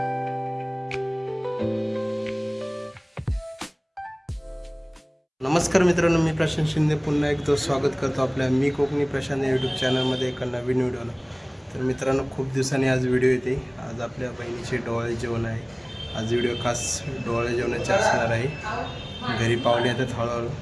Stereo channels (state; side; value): identical; both; correlation 1.00